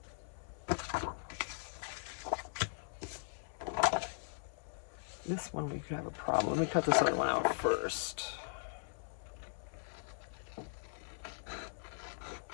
This one we could have a problem. Let me cut this other one out first.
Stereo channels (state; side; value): silent; right; 52 dB below the other